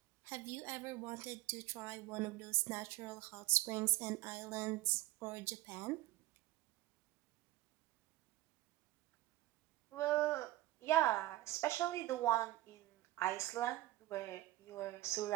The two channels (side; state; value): left; quieter; 16.9 dB